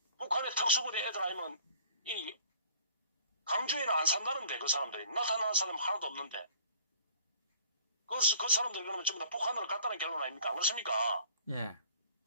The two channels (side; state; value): both; inverted; correlation -0.53